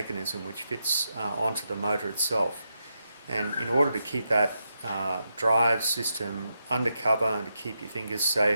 which fits onto the motor itself, and in order to keep that drive system under cover and to keep your fingers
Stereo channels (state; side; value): inverted; both; correlation -0.84